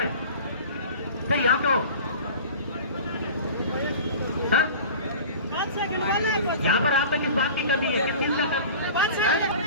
फिर यहाँ क्यों? हाँ यहाँ पर आप पे किस बात की कमी है, किस चीज का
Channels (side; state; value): both; inverted; correlation -0.38